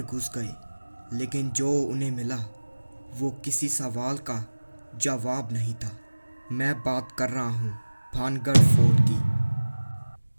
घुस गए, लेकिन जो उन्हें मिला वो किसी सवाल का जवाब नहीं था। मैं बात कर रहा हूँ भानगढ़ फोर्ट की।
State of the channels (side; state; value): both; inverted; correlation -1.00